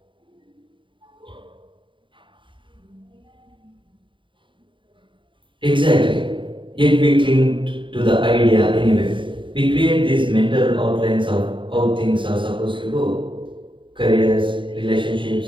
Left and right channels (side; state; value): left; late; 0.24 ms